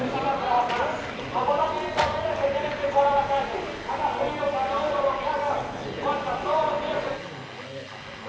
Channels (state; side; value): identical; both; correlation 1.00